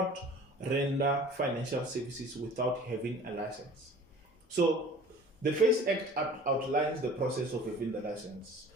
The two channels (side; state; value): both; normal; correlation 0.45